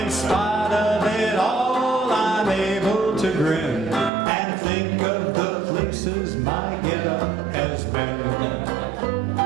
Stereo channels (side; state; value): left; drops out; at 4.1 s